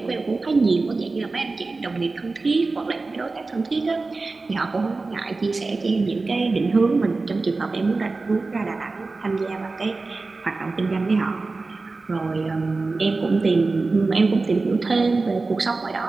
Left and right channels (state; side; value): quieter; left; 3.7 dB